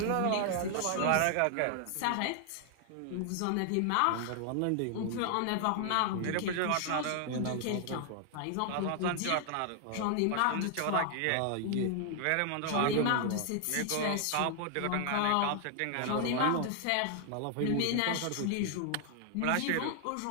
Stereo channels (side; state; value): both; different; correlation 0.00